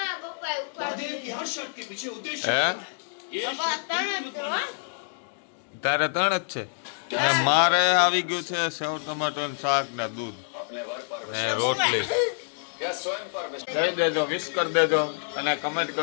તારે 3 જ છે. મારે આવી ગયું છે સેવ ટમાટર શાક ને દૂધ ને રોટલી. કહી દેજો, વિશ કરી દેજો અને કમેન્ટ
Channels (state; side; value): silent; right; digital silence